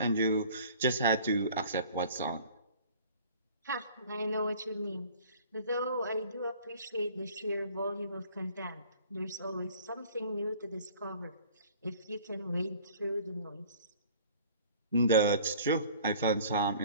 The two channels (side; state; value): both; inverted; correlation -0.50